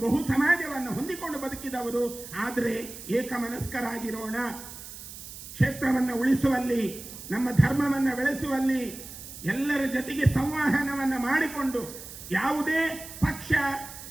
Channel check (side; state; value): right; noise; hiss, 13 dB below the sound